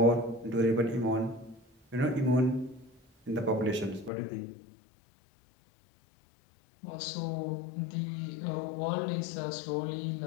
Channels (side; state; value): right; drops out; at 4.1 s